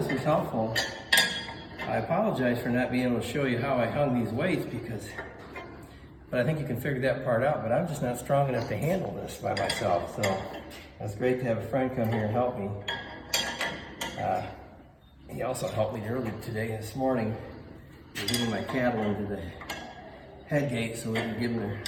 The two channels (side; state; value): both; identical; correlation 1.00